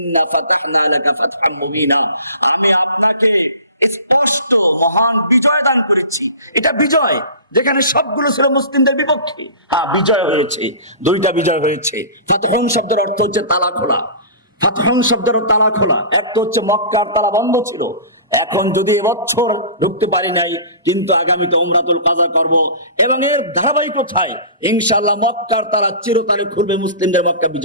ফাতাহনা লাকা ফাতহাম মুবিনা, আমি আপনাকে স্পষ্ট মহান বিজয় দান করেছি। এটা বিজয় যেখানে সবগুলো ছিল মুসলিমদের বিপক্ষে। হ্যাঁ, বিজয় হয়েছে, দুইটা বিজয় হয়েছে। ফাতহুন শব্দের অর্থ হচ্ছে তালা খোলা। ফাতহুন শব্দের তালা খোলা। একটা হচ্ছে মক্কার তালা বন্ধ ছিল, এখন যদি এবছর ঢুকতে পারি নাই, কিন্তু আগামীতে উমরাতুল কাজা করব এবং এর ধারাবাহিকতায় ইনশাআল্লাহ মক্কার তালা চিরতরে খুলবে, মুসলিমদের মক্কা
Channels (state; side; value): inverted; both; correlation -0.38